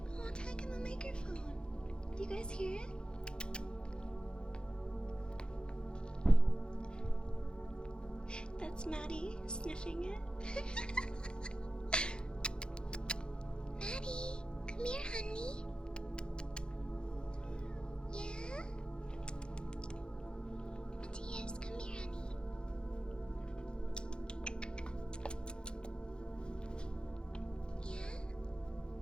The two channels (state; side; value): late; right; 0.049 ms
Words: Oh, talk in the microphone. Do you guys hear it? That's Maddie sniffing it. Maddie, come here, honey. Yeah? Matthias, come here, honey. Yeah?